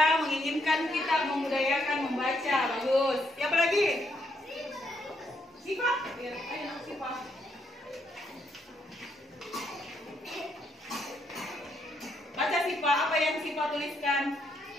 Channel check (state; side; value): normal; both; correlation 0.75